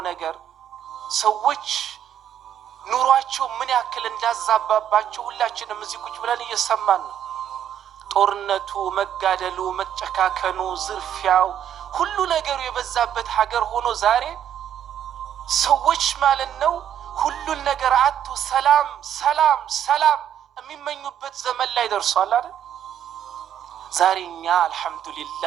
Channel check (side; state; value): left; quieter; 10.0 dB